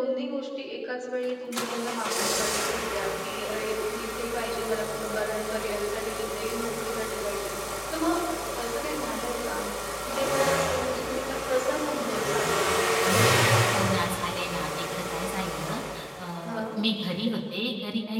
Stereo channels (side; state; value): both; identical; correlation 1.00